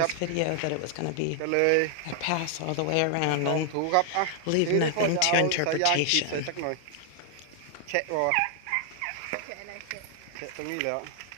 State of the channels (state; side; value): different; both; correlation 0.00